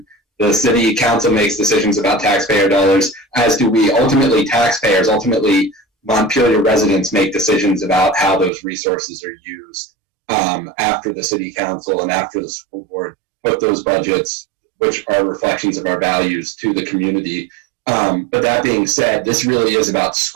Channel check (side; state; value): left; drops out; at 8.5 s